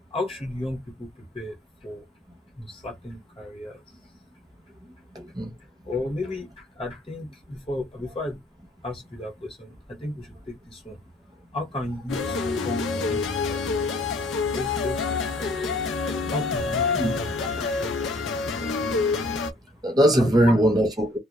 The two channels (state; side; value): normal; both; correlation 0.59